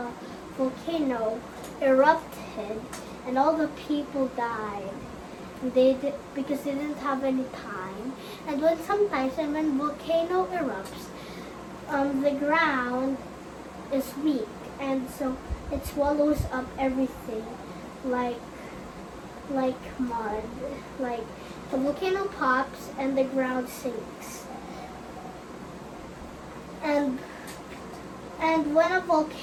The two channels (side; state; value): both; identical; correlation 1.00